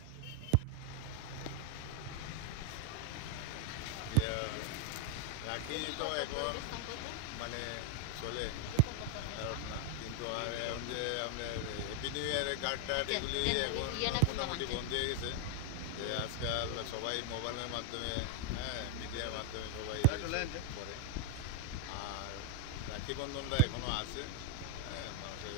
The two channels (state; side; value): different; both; correlation 0.00